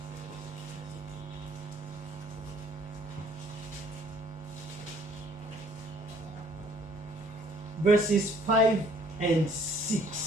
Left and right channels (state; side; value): normal; both; correlation 0.59